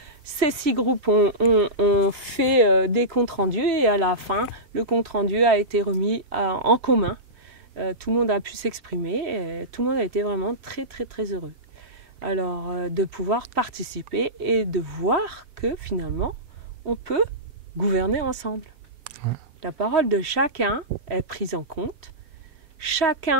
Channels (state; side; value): late; left; 7.6 ms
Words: Ces 6 groupes ont fait des comptes rendus et à la fin, le compte rendu a été remis en commun. Tout le monde a pu s'exprimer et tout le monde a été vraiment très très très heureux. Alors de pouvoir participer et de voir que finalement, on peut gouverner ensemble. Ouais. La parole de chacun est prise en compte,